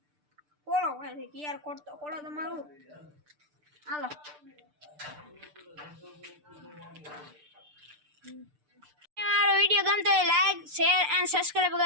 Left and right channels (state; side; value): late; left; 6.7 ms